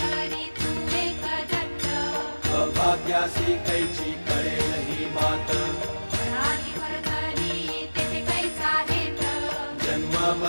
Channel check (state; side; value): inverted; both; correlation -1.00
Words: तू एक दत्त अभाग्यासी कैची कळेल ही मात पराली वरधरी तेथे कैचा हेत जन्म